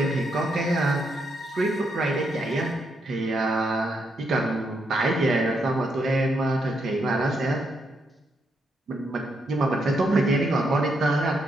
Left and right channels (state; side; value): normal; both; correlation 0.78